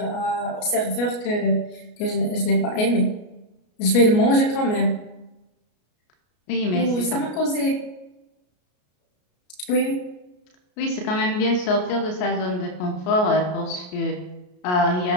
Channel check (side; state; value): right; late; 33 ms